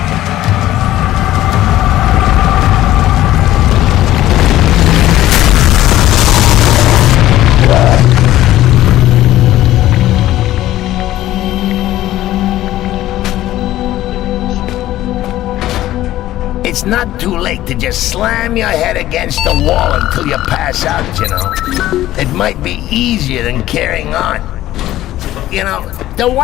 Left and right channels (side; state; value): right; quieter; 14.5 dB